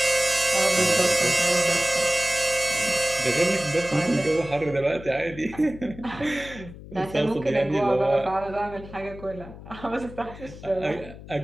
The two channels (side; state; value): left; noise; hum, 15 dB below the sound